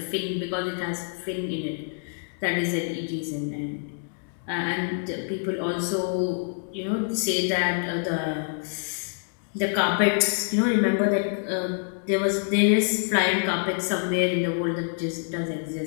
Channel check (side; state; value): right; silent; digital silence